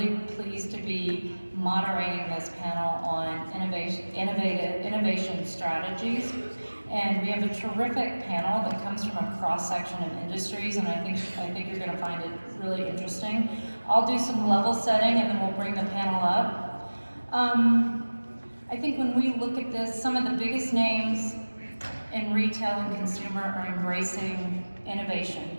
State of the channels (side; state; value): both; inverted; correlation -1.00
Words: pleased to be moderating this panel on innovation strategies. And we have a terrific panel that comes from a cross-section of industries, and I think you're going to find it really interesting. I'll do some level setting, and then we'll bring the panel up. I think when we look at this, some of the biggest names in retail and consumer are embracing innovation